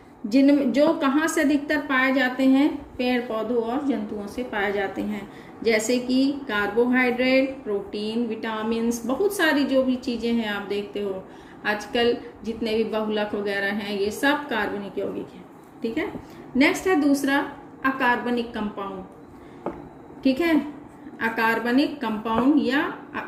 जो कहाँ से अधिकतर पाए जाते हैं, पेड़ पौधों और जंतुओं से पाए जाते हैं, जैसे कि कार्बोहाइड्रेट, प्रोटीन, विटामिन्स, बहुत सारी जो भी चीज़ें हैं आप देखते हो आजकल जितने भी बहुलक वगैरह हैं, ये सब कार्बनिक यौगिक हैं। ठीक है, नेक्स्ट है दूसरा अकार्बनिक कंपाउंड। ठीक है, अकार्बनिक कंपाउंड या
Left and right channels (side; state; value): both; identical; correlation 1.00